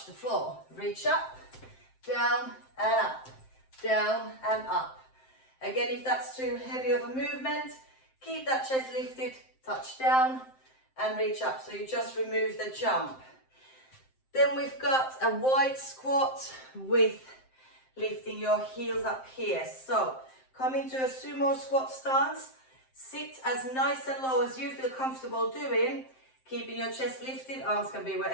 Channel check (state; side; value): late; right; 7.7 ms